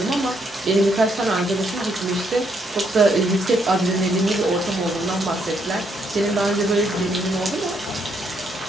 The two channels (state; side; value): noise; right; hum, 29 dB below the sound